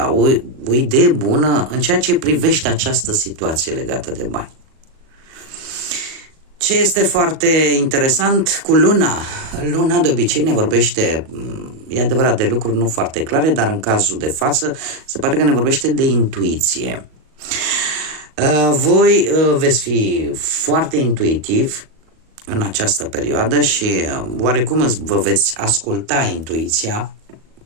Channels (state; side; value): late; left; 37 ms